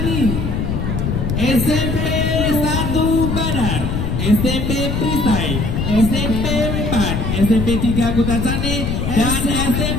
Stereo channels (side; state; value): left; noise; rumble, 1 dB below the sound